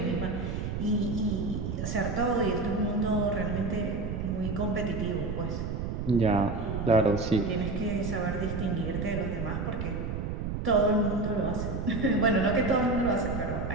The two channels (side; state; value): right; noise; rumble, 3 dB below the sound